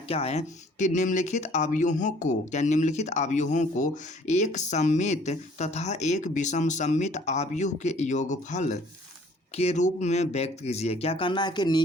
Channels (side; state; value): both; normal; correlation 0.56